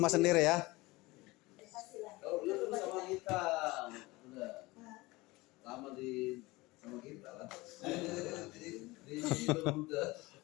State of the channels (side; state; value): right; quieter; 21.6 dB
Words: sendiri ya. Kalau dulu sama kita. Udah. Lama sama kita lah. Di udah.